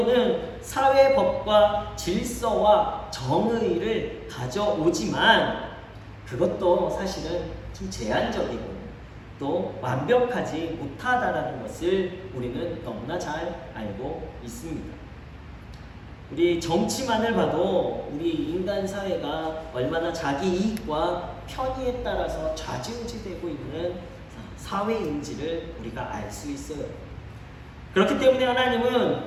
사회 법과 질서와 정의를 가져오지만 그것도 사실은 좀 제한적이고 또 완벽하지 못하다라는 것을 우리는 너무나 잘 알고 있습니다. 우리 정치만을 봐도 우리 인간 사회가 얼마나 자기 이익과 편의에 따라서 좌지우지되고 있는 사회인지를 우리가 알 수 있어요. 그렇기 때문에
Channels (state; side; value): identical; both; correlation 1.00